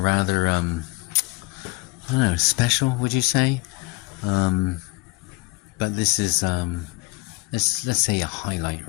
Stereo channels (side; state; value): right; quieter; 24.4 dB